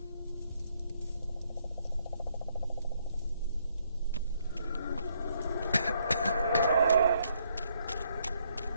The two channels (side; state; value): both; inverted; correlation -0.72